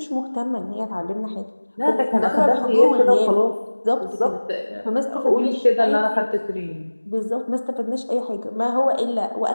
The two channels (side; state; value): both; inverted; correlation -1.00